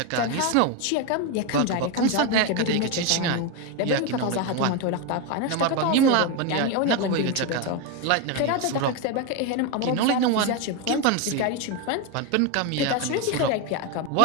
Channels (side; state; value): both; different; correlation 0.02